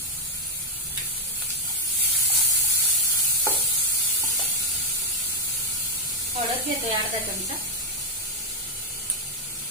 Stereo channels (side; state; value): both; normal; correlation 0.02